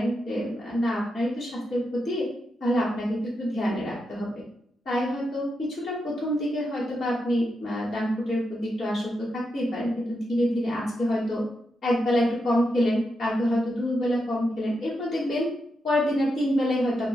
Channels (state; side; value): normal; both; correlation 0.85